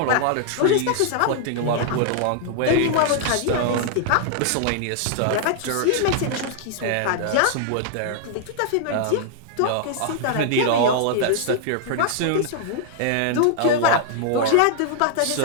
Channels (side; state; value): both; different; correlation -0.01